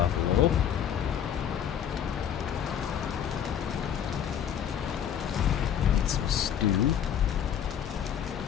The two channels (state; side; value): quieter; right; 9.1 dB